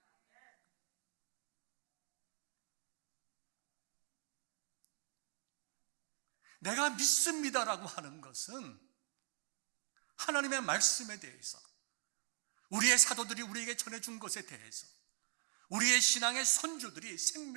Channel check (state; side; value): quieter; left; 37.0 dB